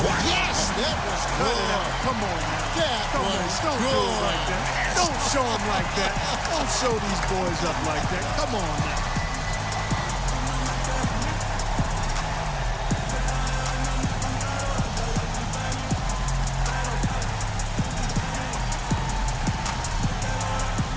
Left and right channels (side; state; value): both; identical; correlation 1.00